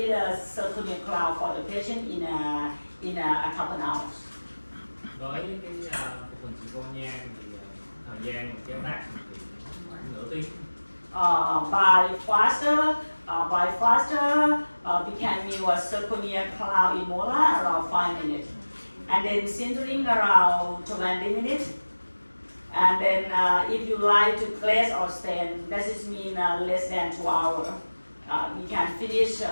zirconia cloud for the patient in a couple hours. Với cái phục hình zirconia thì thời gian mình chế tác thì khoảng nửa tiếng. By faster, we can mill a zirconia cloud in molar around 5 minutes, and then sintering around 20 minutes. And then if you like to glaze or stain, that is mean less than 2 hours. We can finish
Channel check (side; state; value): both; inverted; correlation -1.00